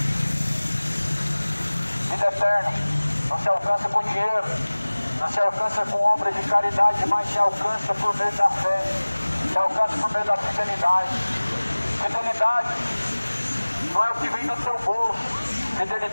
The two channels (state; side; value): inverted; both; correlation -1.00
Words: Vida eterna não se alcança com dinheiro, não se alcança com obras de caridade, mas se alcança por meio da fé, se alcança por meio da fidelidade. Fidelidade não é o que vem do seu bolso.